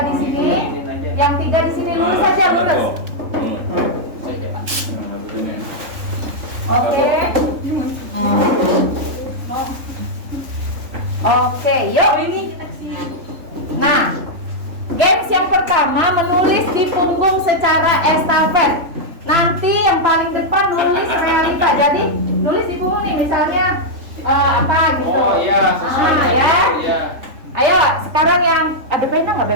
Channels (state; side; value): late; left; 3.5 ms